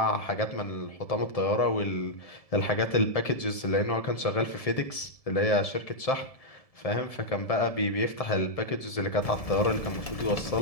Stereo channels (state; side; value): late; right; 1.7 ms